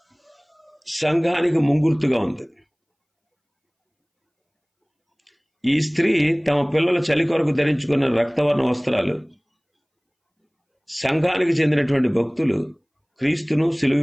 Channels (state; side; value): identical; both; correlation 1.00